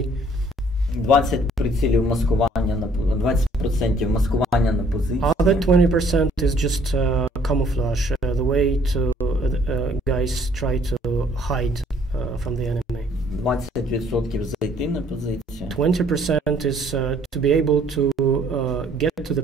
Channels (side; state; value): both; normal; correlation 0.61